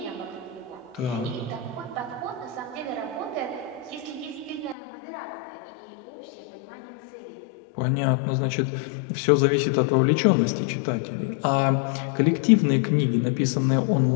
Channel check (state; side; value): drops out; right; at 4.8 s